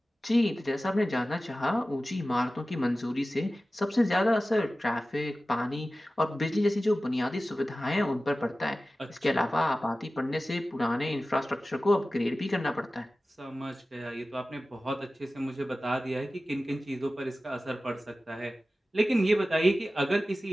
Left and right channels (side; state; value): both; normal; correlation 0.96